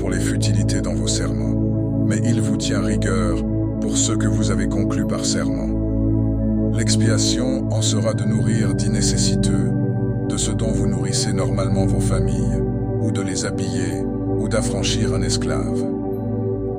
les futilités dans vos serments, mais il vous tient rigueur pour ce que vous avez conclu par serment. L'expiation en sera de nourrir dix nécessiteux, de ce dont vous nourrissez normalement vos familles, ou de les habiller, ou d'affranchir un esclave.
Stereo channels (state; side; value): identical; both; correlation 1.00